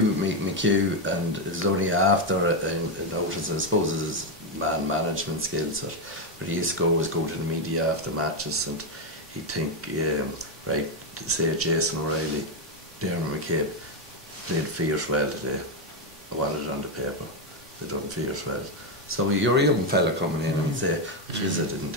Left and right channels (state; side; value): normal; both; correlation 0.06